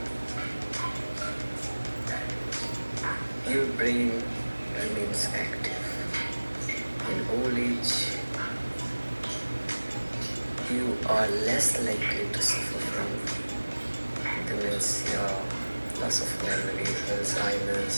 your brain remains active. In old age, you are less likely to suffer from dementia, loss of memory,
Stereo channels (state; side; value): inverted; both; correlation -1.00